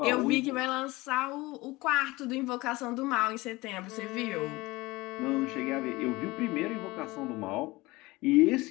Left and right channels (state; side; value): quieter; right; 21.4 dB